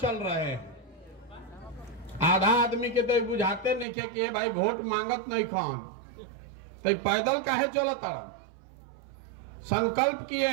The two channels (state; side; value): drops out; left; at 3.9 s